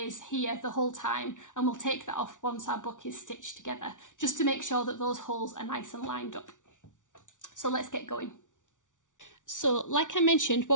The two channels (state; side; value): late; right; 0.87 ms